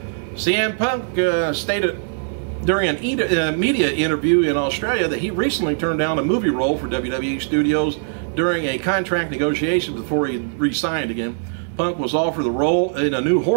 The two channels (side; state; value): left; silent; digital silence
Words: CM Punk stated during a media interview in Australia that he recently turned down a movie role for WWE Studios during a contract negotiation before he re-signed again. Punk was offered the role in a new